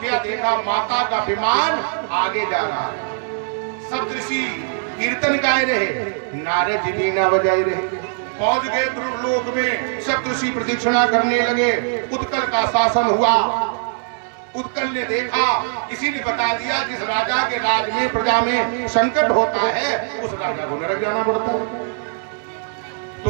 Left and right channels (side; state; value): left; silent; digital silence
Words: देखा, माता का विमान आगे जा रहा है। सप्तऋषि कीर्तन गाए रहे, नारद जी बीना बजाए रहे। पहुंच गए ध्रुव लोक में, सप्तऋषि प्रदक्षिणा करने लगे। उत्कल का शासन हुआ। उत्कल ने देखा, किसी ने बता दिया जिस राजा के राज में प्रजा में संकट होता है उस राजा को नरक जाना पड़ता है।